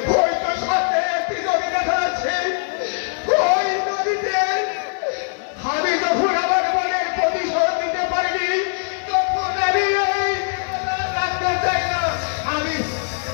সাথে একটি নদী দেখা যাচ্ছে ওই নদীতে আমি যখন আমার মনের প্রতিশোধ নিতে পারিনি তখন আমি রাখতে চাই না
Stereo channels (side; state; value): right; silent; digital silence